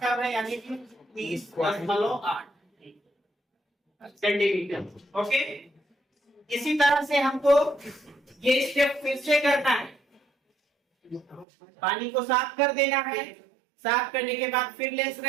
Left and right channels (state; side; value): drops out; left; at 11.5 s